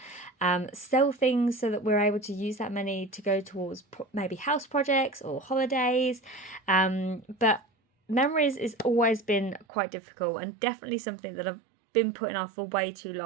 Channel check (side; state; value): left; drops out; at 9.7 s